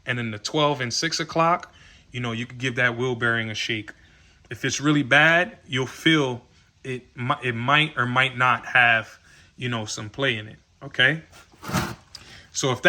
and then the 12 and 6 o'clock, you know, you could give that wheel bearing a shake. If it's really bad, you'll feel it. It might or might not have, you know, some play in it. Okay. So if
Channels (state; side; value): identical; both; correlation 1.00